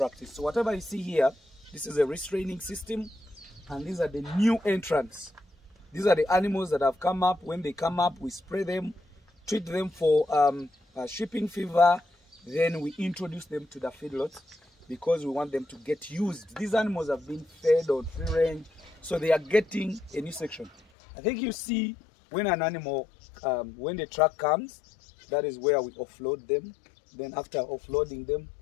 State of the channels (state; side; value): drops out; right; at 20.8 s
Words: So whatever you see here, this is a restraining system, and these are the new entrants. These are the animals that have come up. When they come up, we spray them, treat them for shipping fever, then we introduce them to the feedlot because we want them to get used. These animals have been fed on free range, so they are getting a new section. I think you see when an animal, when the truck comes, that is where we offload them. Then after offloading them,